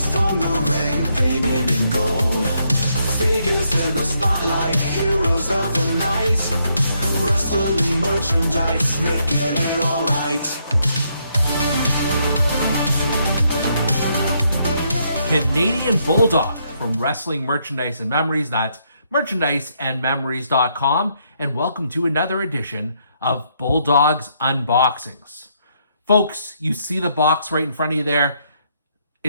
from the ring, painted in gold. Figures in the spotlight, heroes of the night. Wrestling merchandise, making it alright. Canadian Bulldog from Wrestling Merchandise and Memories. That's merchandiseandmemories.com. And welcome to another edition of Bulldog's Unboxings. Folks, you see the box right in front of you there.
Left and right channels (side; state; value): both; inverted; correlation -0.75